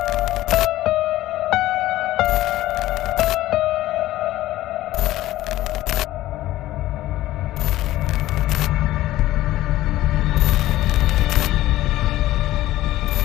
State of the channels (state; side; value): quieter; right; 15.5 dB